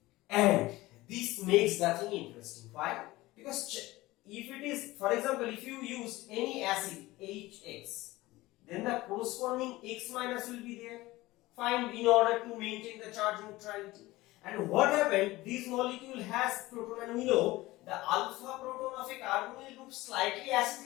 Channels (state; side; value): quieter; right; 19.0 dB